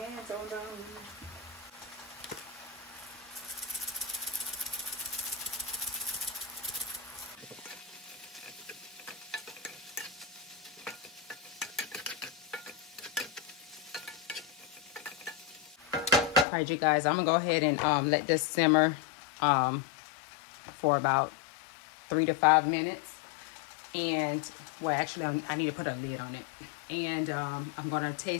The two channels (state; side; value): drops out; right; at 16.4 s